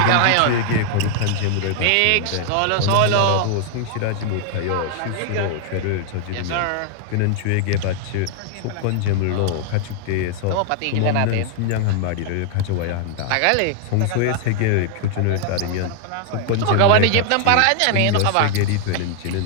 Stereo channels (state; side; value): different; both; correlation 0.00